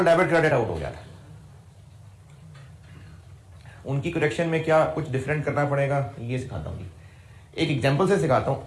डेबिट क्रेडिट आउट हो गया था, उनकी करेक्शन में क्या कुछ डिफरेंट करना पड़ेगा ये सिखाता हूँ। एक एग्जांपल से सिखाता हूँ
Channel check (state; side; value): identical; both; correlation 1.00